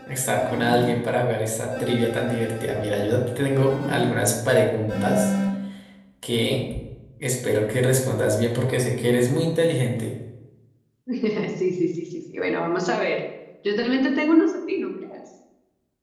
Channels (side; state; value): both; identical; correlation 1.00